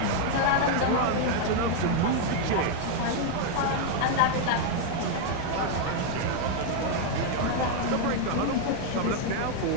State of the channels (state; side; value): different; both; correlation 0.00